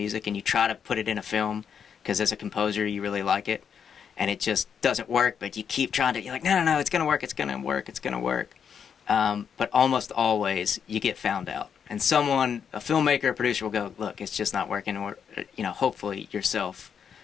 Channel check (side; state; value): right; quieter; 7.4 dB